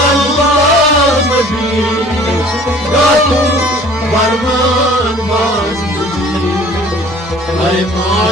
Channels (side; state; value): both; normal; correlation 0.50